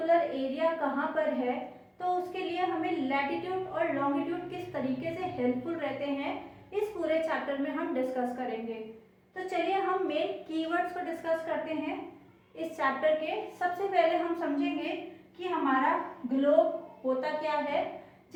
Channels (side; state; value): both; identical; correlation 1.00